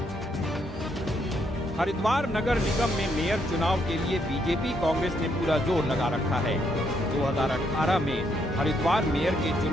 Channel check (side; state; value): both; normal; correlation 0.74